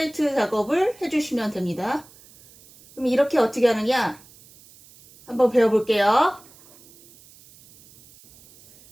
작업을 해주시면 됩니다. 그럼 이렇게 어떻게 하느냐 한번 배워볼게요.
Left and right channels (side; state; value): right; noise; hiss, 25 dB below the sound